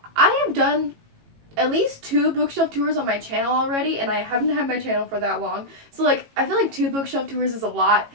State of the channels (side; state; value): left; late; 18 ms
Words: I have done at least 2 bookshelf tours on my channel already, and I haven't had my channel for that long. So I feel like 2 bookshelf tours is a lot.